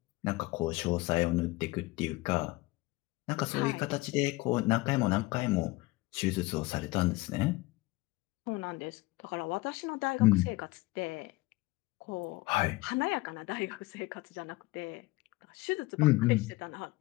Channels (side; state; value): right; quieter; 21.3 dB